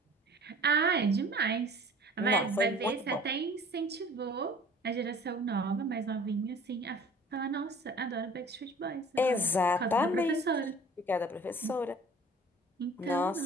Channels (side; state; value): both; normal; correlation 0.48